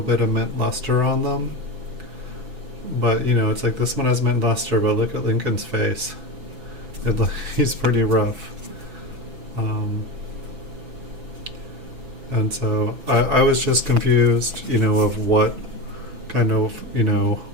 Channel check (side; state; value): left; late; 6.0 ms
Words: bit of mint luster on them. But it's like this one has mint luster, but look at Lincoln's face. He's pretty rough. And so I was just confused, of what kind of,